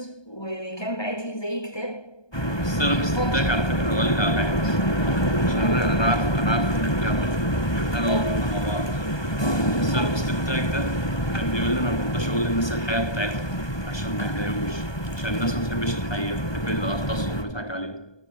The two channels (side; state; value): right; late; 1.2 ms